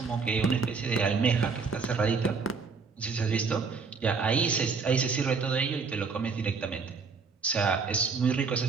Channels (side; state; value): left; quieter; 5.0 dB